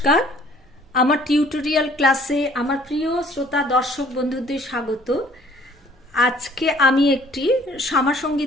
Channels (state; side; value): normal; both; correlation 0.56